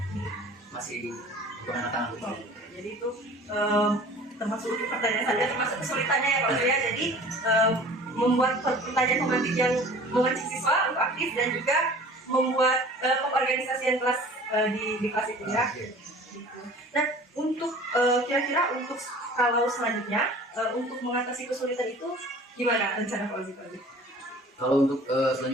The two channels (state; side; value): normal; both; correlation 0.45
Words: masih kurang matang gitu. Jadi itu termasuk untuk pertanyaan saya termasuk kesulitannya ya Pak Ozi ya. Jadi membuat pertanyaan pemantik yang mengajak siswa untuk aktif dan juga membuat pengorganisasian kelas di kelas itu ya. Nah, untuk kira-kira untuk kalau selanjutnya untuk mengatasi kesulitan itu gimana rencana Pak Ozi? Kalau untuk